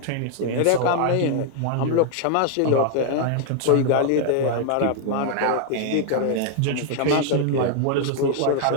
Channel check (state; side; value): different; both; correlation 0.00